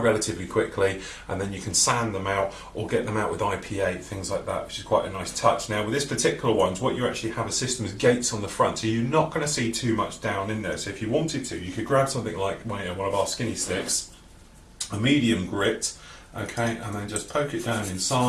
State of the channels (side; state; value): both; identical; correlation 1.00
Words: quickly, and then you can sand them out or get them out with IPA, things like that, which is quite a nice touch. Now with this particular ones, what you actually have a system is gates on the front, so you're not going to see too much down in there. So if you wanted to, you could grab something like one of our skinny sticks, a medium grit, okay, and then just poke it down